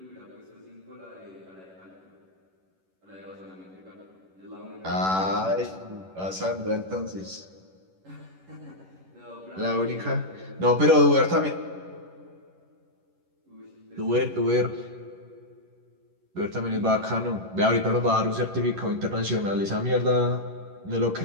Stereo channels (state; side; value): late; left; 11 ms